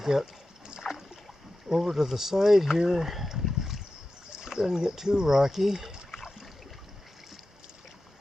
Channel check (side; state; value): both; normal; correlation 0.93